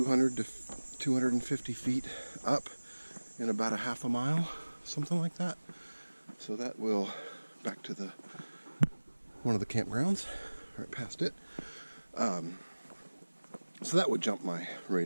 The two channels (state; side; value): inverted; both; correlation -1.00